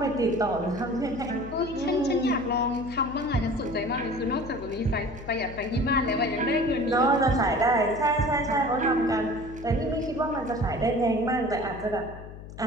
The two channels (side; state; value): left; noise; hum, 14 dB below the sound